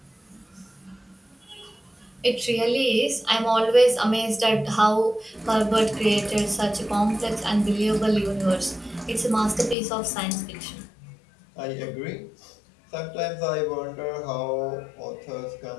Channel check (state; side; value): drops out; right; at 9.8 s